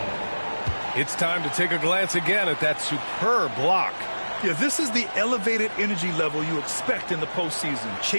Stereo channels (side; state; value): both; inverted; correlation -1.00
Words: It's time to take a glance again at that superb block. Yeah, this is the elevated energy level you expect in the postseason,